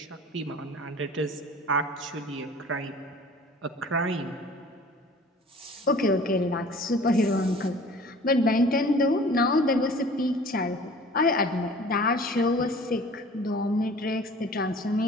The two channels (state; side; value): normal; both; correlation 0.47